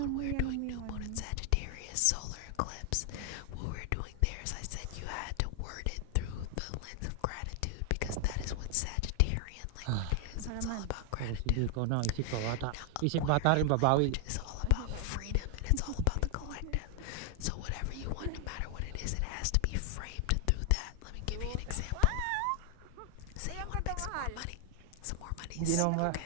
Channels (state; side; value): different; both; correlation 0.00